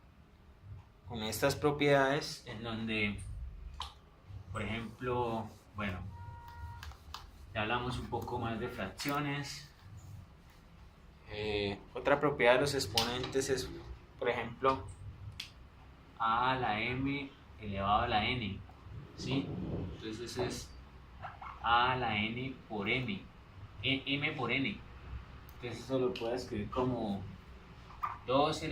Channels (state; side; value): identical; both; correlation 1.00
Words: propiedades en donde, por ejemplo, bueno, ya hablamos un poco más de fracciones. Otra propiedad de los exponentes es, por ejemplo, a a la m elevado a la n, ¿sí? Entonces es a a la n por m, m por n. Entonces eso lo puedo escribir como 2